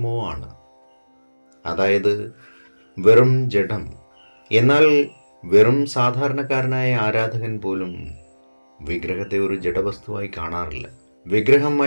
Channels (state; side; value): inverted; both; correlation -1.00